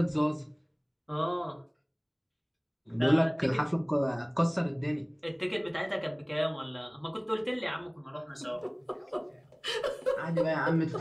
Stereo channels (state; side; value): identical; both; correlation 1.00